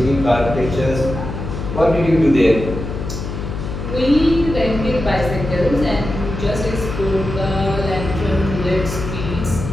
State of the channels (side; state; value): left; noise; hum, 6 dB below the sound